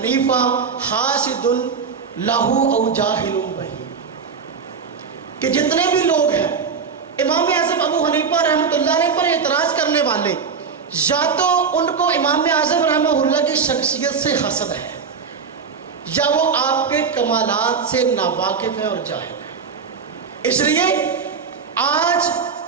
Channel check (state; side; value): quieter; left; 5.8 dB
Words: حاسد لہو او جاہل بہی، کہ جتنے بھی لوگ ہیں امام اعظم ابو حنیفہ رحمۃ اللہ علیہ پر اعتراض کرنے والے یا تو ان کو امام اعظم رحمہ اللہ کی شخصیت سے حسد ہے، یا وہ آپ کے کمالات سے ناواقف ہے اور جاہل ہے۔ اس لیے آج